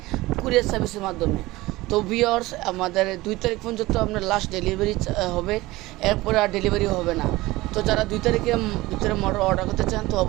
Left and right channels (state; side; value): quieter; left; 19.5 dB